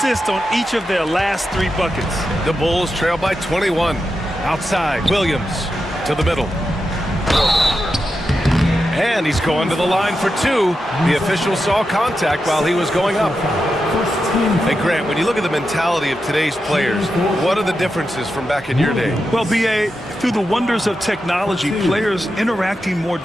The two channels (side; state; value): both; normal; correlation 0.88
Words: on each of their last 3 buckets. The Bulls trail by 21. Outside, Williams to the middle. And he's going to the line for 2. The official saw contact while he was going up. Hey, Grant, when you look at the mentality of today's players, what are the differences from back in your day? Well, B.A., through the wonders of technology, players interacting more